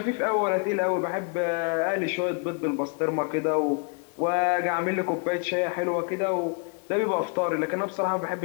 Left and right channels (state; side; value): quieter; right; 36.7 dB